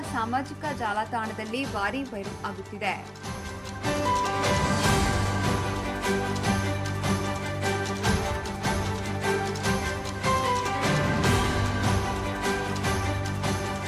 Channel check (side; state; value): both; identical; correlation 1.00